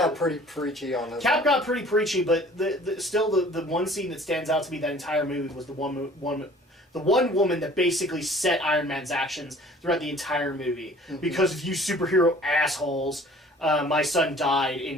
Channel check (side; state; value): both; normal; correlation 0.50